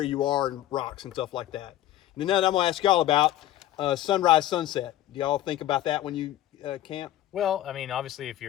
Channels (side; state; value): right; quieter; 13.7 dB